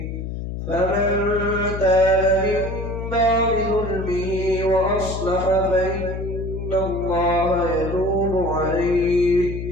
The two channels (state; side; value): noise; left; hum, 6 dB below the sound